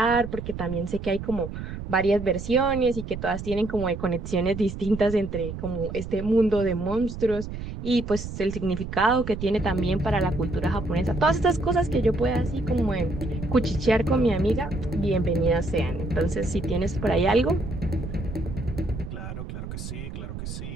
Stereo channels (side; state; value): right; noise; rumble, 8 dB below the sound